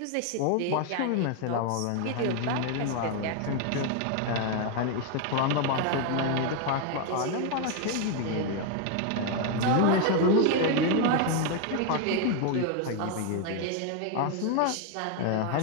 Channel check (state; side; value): different; both; correlation 0.01